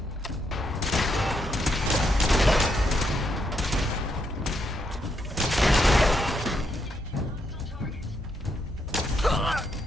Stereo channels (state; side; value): normal; both; correlation 0.78